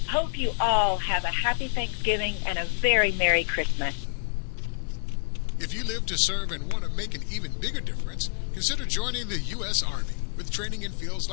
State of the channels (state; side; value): silent; right; digital silence